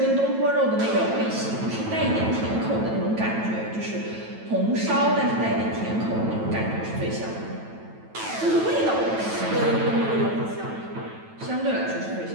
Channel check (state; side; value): late; left; 9.1 ms